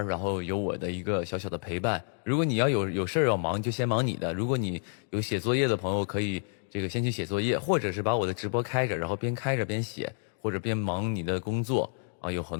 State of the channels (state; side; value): silent; right; digital silence